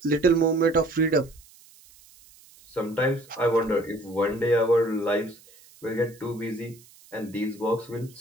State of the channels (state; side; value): noise; right; hiss, 25 dB below the sound